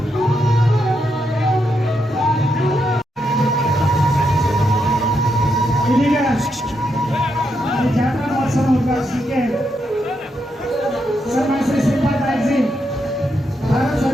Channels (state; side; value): normal; both; correlation 0.81